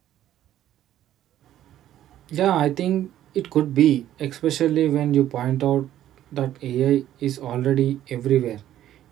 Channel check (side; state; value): left; quieter; 12.2 dB